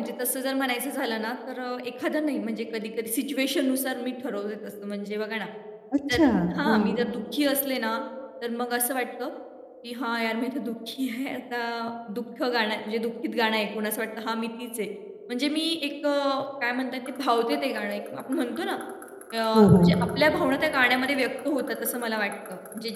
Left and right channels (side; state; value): both; identical; correlation 1.00